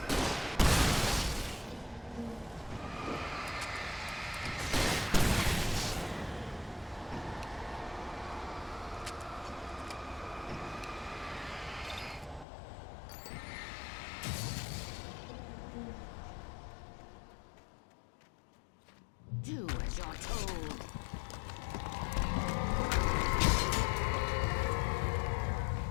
Do as you're told.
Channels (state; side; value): drops out; right; at 12.5 s